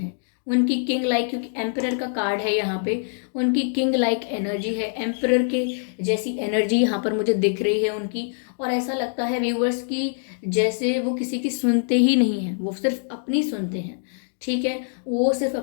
उनकी किंग लाइक, क्योंकि एम्परर का कार्ड है यहाँ पे, उनकी किंग लाइक एनर्जी है, एम्परर के जैसी एनर्जी यहाँ पर मुझे दिख रही है उनकी। और ऐसा लगता है व्यूअर्स कि जैसे वो किसी की सुनते ही नहीं हैं, वो सिर्फ अपनी सुनते हैं। ठीक है, वो सिर्फ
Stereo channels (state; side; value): silent; right; digital silence